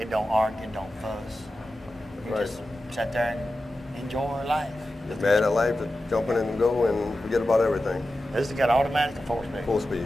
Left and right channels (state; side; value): normal; both; correlation 0.92